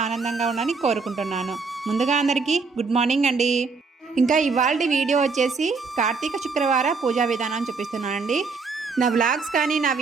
ఆనందంగా ఉన్నారని కోరుకుంటున్నాను. ముందుగా అందరికీ గుడ్ మార్నింగ్ అండి. ఇంకా ఇవాళ వీడియో వచ్చేసి కార్తీక శుక్రవార పూజా విధానం చూపిస్తున్నానండి. నా వ్లాగ్స్ కానీ నా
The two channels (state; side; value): quieter; left; 4.6 dB